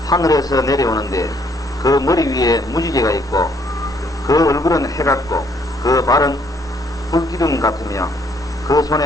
하늘에서 내려오는데 그 머리 위에 무지개가 있고 그 얼굴은 해 같고 그 발은 불기둥 같으며 그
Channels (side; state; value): both; normal; correlation 0.67